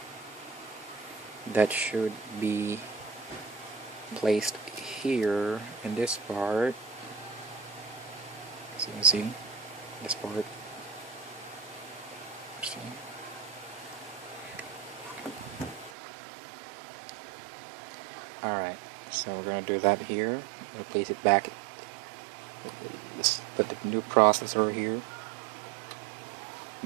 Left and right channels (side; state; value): left; drops out; at 15.9 s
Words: that should be placed here in this part. So you can see this part. See? Alright, so we're going to do that here. I'm going to place it back. Put the new processor here.